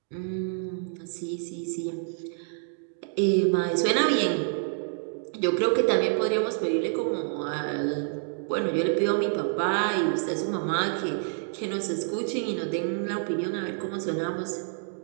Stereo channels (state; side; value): silent; left; 59 dB below the other